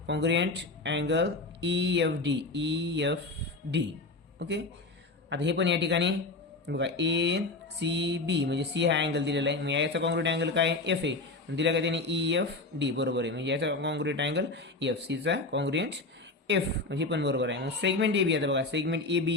congruent angle E F D. Okay. आता हे पण या ठिकाणी बघा, ए सी बी म्हणजे सी हा अँगल दिलेला आहे, मग याचा कॉन्ग्रुएंट अँगल काय? एफ ए दिला का त्याने? ई एफ डी, बरोबर आहे. म्हणजे याचा कॉन्ग्रुएंट अँगल एफ, सीचा कॉन्ग्रुएंट एफ, म्हणजे पण बरोबर आहे. मग सेगमेंट ए बी. आता बघा, सेगमेंट ए बी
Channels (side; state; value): right; quieter; 3.3 dB